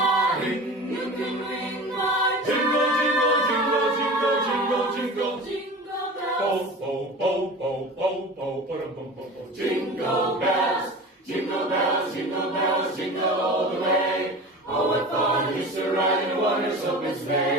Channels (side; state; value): both; normal; correlation 0.34